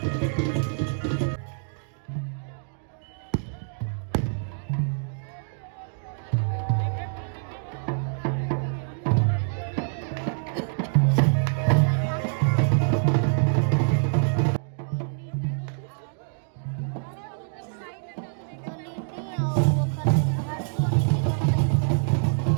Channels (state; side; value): silent; left; digital silence